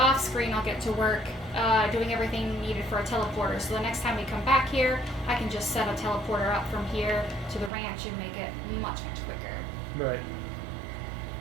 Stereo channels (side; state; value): left; drops out; at 7.7 s